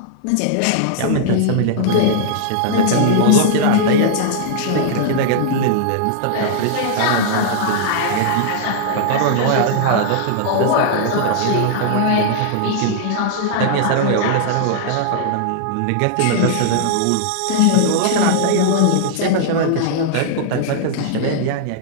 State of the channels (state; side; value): different; both; correlation -0.01